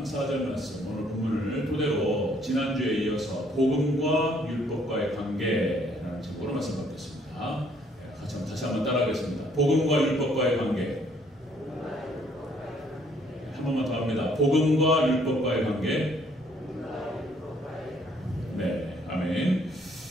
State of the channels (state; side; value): normal; both; correlation 0.64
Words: 4절 말씀, 오늘 본문을 토대로 지난주에 이어서 복음과 율법과의 관계라는 제목으로 말씀 받겠습니다. 다시 한번 따라하겠습니다. 복음과 율법과의 관계. 한 번만 더 합니다. 복음과 율법과의 관계. 네, 아멘.